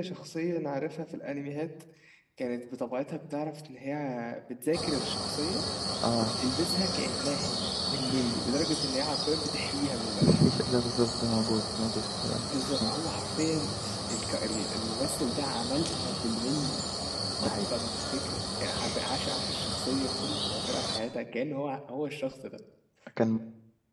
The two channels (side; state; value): both; identical; correlation 1.00